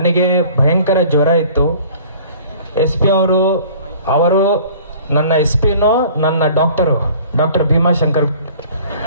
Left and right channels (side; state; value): both; inverted; correlation -0.49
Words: ಭಯಂಕರ ಜ್ವರ ಇತ್ತು. SP ಅವರು ನನ್ನ SPನೂ ನನ್ನ ಡಾಕ್ಟರ್ ಭೀಮಾಶಂಕರ್